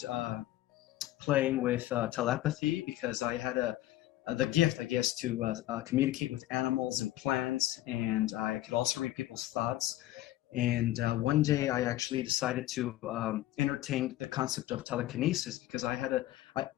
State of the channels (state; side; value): quieter; right; 15.1 dB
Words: playing with telepathy because I had the gift, I guess, to communicate with animals and plants, and I could also read people's thoughts. And one day I actually decided to entertain the concept of telekinesis because